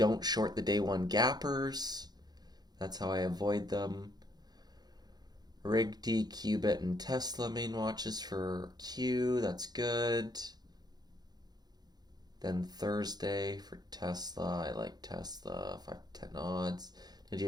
short the day one gappers. That's how I avoid them. RigD, Qubit, and Tesla main watches for Q. That's good. Then Thursday for Tesla. I like Tesla. 5 to 10 odds. Did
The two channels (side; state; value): left; late; 0.19 ms